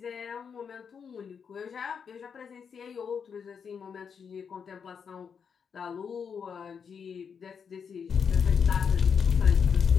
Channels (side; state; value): right; quieter; 6.6 dB